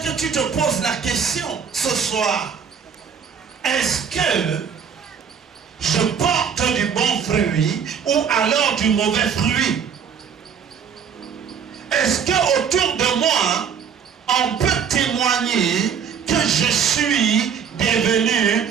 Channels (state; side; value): quieter; left; 7.1 dB